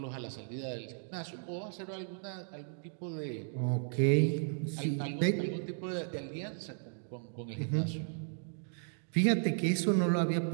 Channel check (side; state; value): left; silent; digital silence